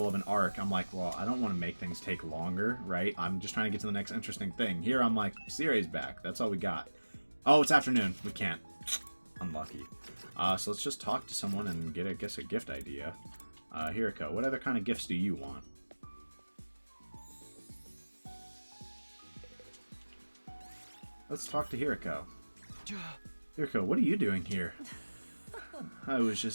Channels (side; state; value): both; inverted; correlation -1.00